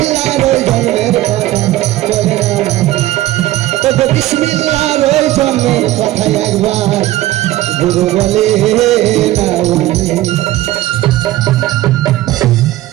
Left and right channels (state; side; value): quieter; left; 16.0 dB